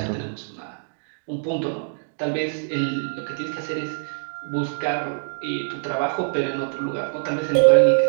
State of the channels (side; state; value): left; silent; digital silence